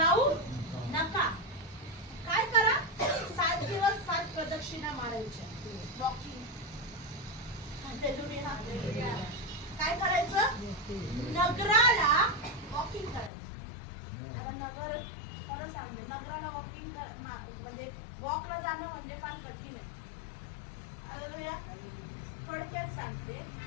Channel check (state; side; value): drops out; right; at 13.3 s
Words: नका. काय करा? 7 दिवस 7 प्रदक्षिणा मारायच्या. वॉकिंग. काय करायचं? नगराला वॉकिंग करायचं. आता नगर खरं सांगते नगराला वॉकिंग म्हणजे वॉकला जाणं म्हणजे फार कठीण आहे. थोडक्यात सांगते